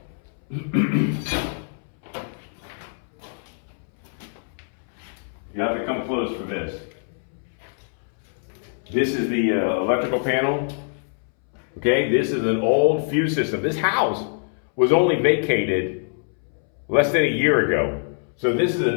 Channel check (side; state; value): right; silent; 63 dB below the other